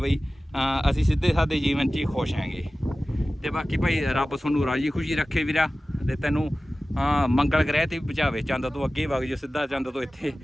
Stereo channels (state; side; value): normal; both; correlation 0.96